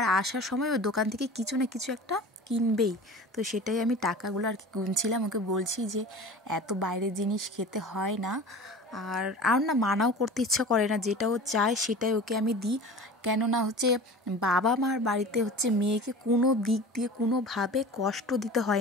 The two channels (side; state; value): both; normal; correlation 0.38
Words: আসার সময় ওই দোকান থেকে কিছু না কিছু একটা কিনবেই। তো সেটাই আমি টাকাগুলো আর কি গুনছিলাম, ওকে বলছি যে এত বাইরের জিনিস খেতে হয় না। আর না মানাও করতে ইচ্ছা করে না, যেটা ও চায় সেটাই ওকে আমি দিই। কেননা বাবা মার বাড়িতে মেয়েকে কোনো দিক দিয়ে কোনোভাবে কষ্ট দিতে